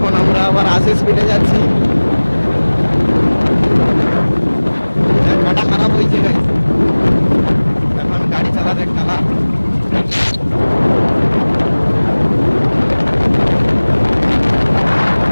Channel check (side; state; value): both; inverted; correlation -1.00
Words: আমরা আবার 80 স্পিডে যাচ্ছি। চাকাটা খারাপ হয়েছে গাইস, এখন গাড়ি চালাতে কালা।